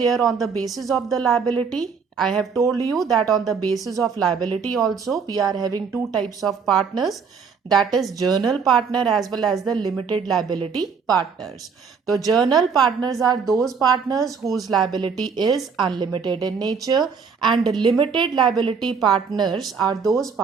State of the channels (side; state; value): left; quieter; 5.8 dB